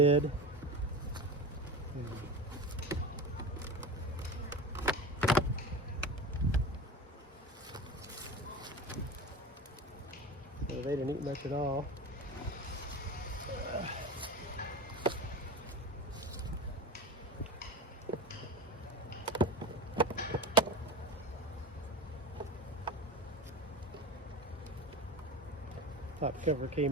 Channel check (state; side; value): normal; both; correlation 0.28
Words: So they didn't eat much at all. Top cover